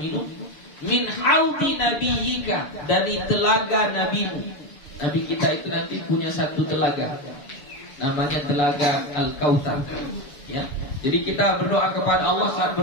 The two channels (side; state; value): right; late; 7.0 ms